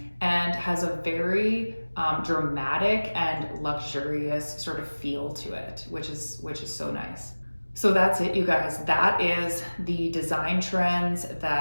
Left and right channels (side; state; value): both; inverted; correlation -1.00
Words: and has a very dramatic and luxurious sort of feel to it, which is so nice. So that's it, you guys. That is the design trends